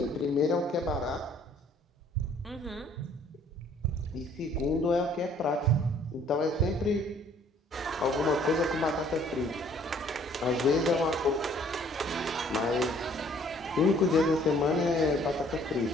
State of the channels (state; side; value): normal; both; correlation 0.58